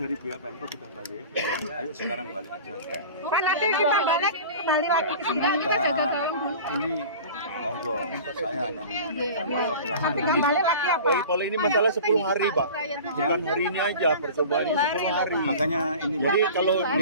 pihak Pemkot sudah balik. Ayo sekarang balik aja. Pak, nanti kita balik kembali lagi ke sini. Enggak, kita jaga gawang dulu. Ini monggo, saya hanya menyampaikan Nanti kembali lagi apa? Paling ini masalah 10 hari, Pak. Ya. Bukan hari ini aja, percobaan ini 10 hari. Makanya ini Jadi kalau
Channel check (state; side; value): inverted; both; correlation -0.38